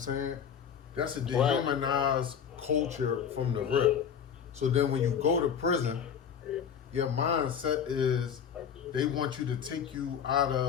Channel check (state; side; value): quieter; right; 7.8 dB